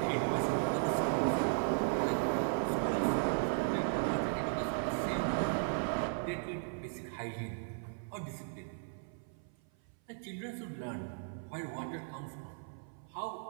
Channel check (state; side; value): silent; left; 54 dB below the other